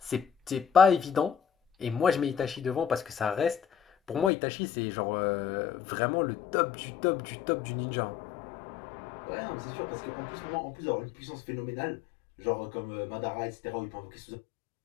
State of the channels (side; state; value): right; drops out; at 4.3 s